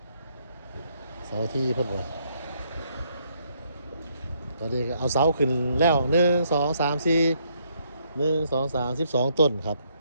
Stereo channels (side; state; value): both; inverted; correlation -0.72